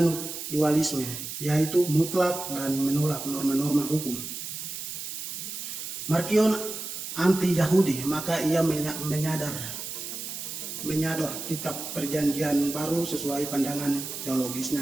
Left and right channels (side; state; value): right; noise; hiss, 7 dB below the sound